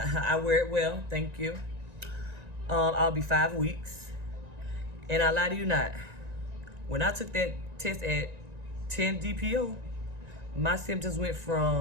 wear it well, thank you. I'll be 5 weeks. And I lie to you not, when I took that test at 10 DPO, my symptoms went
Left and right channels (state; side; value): late; left; 1.9 ms